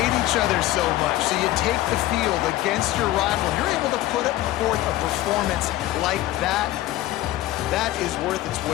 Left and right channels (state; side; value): quieter; right; 15.6 dB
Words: each other so much. So you take the field against your rival. You're able to put forth a performance like that. That is worth its